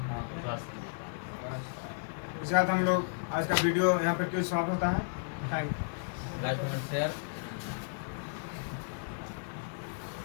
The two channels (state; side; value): silent; right; digital silence